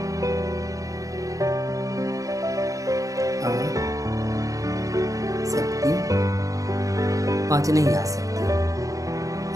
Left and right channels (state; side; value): late; left; 0.16 ms